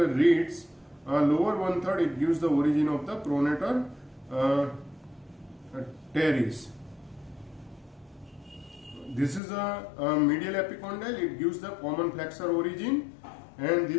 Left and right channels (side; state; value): right; drops out; at 9.4 s